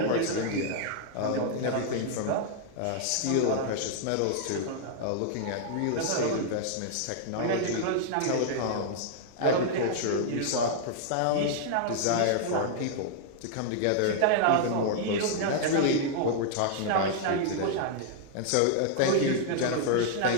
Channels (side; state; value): both; different; correlation 0.00